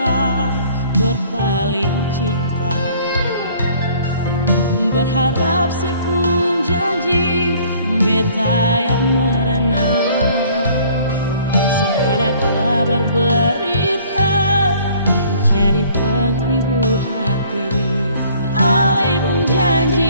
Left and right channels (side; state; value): both; inverted; correlation -0.56